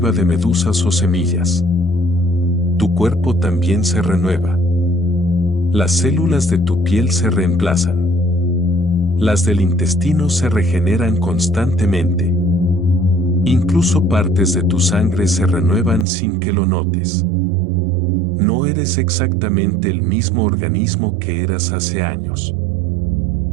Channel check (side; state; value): left; drops out; at 16.1 s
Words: de medusas o semillas. Tu cuerpo también se renueva. Las células de tu piel se reemplazan. Las del intestino se regeneran constantemente. Incluso partes de tu sangre se renuevan sin que lo notes. No eres exactamente el mismo organismo que eras hace años.